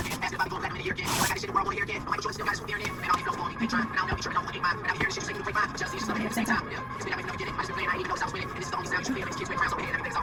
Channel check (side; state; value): both; identical; correlation 1.00